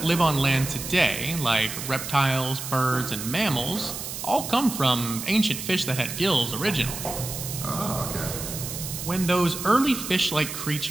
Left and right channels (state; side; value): noise; right; hiss, 7 dB below the sound